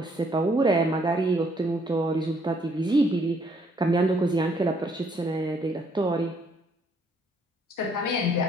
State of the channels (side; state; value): both; normal; correlation 0.66